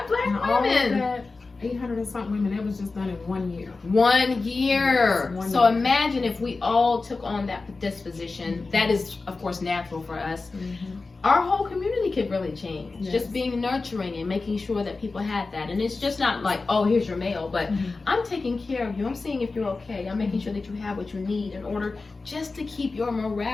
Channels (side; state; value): right; quieter; 3.8 dB